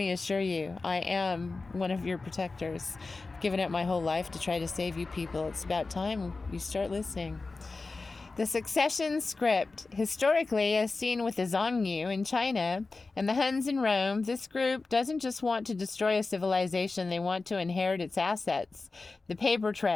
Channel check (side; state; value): right; quieter; 3.8 dB